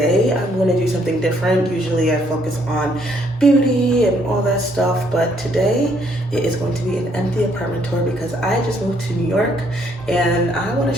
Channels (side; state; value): both; normal; correlation 0.68